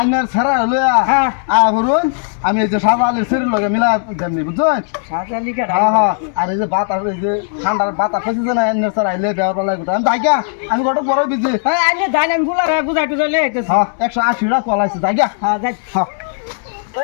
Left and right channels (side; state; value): right; silent; digital silence